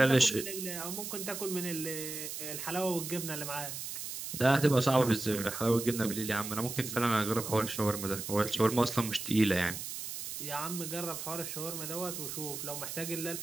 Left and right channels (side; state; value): right; noise; hiss, 7 dB below the sound